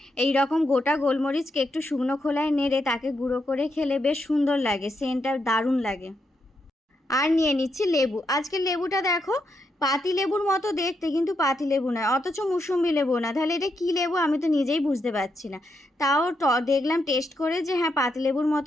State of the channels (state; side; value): normal; both; correlation 0.81